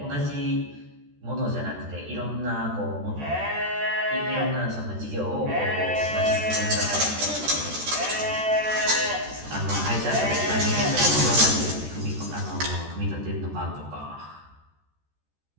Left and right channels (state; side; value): late; left; 14 ms